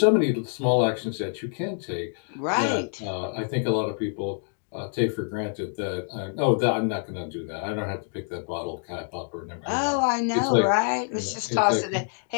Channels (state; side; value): silent; right; 61 dB below the other